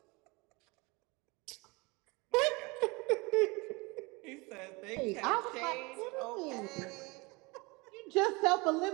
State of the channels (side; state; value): left; quieter; 26.2 dB